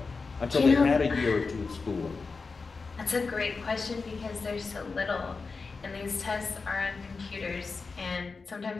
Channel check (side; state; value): right; quieter; 4.4 dB